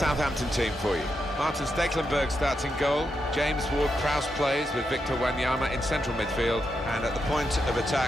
team for you. Martin Stekelenburg starts in goal. James Ward-Prowse plays with Victor Wanyama in central midfield. And at the point of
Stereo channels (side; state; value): both; normal; correlation 0.84